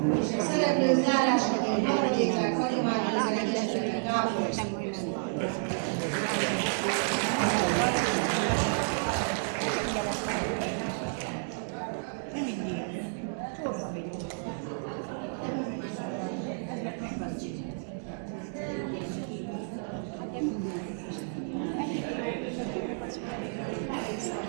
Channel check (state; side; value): silent; left; digital silence